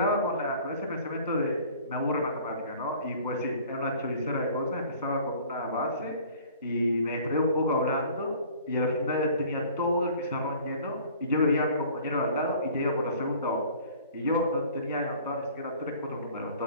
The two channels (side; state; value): both; inverted; correlation -0.49